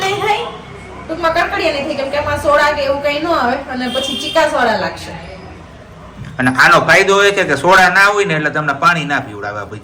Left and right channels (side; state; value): both; identical; correlation 1.00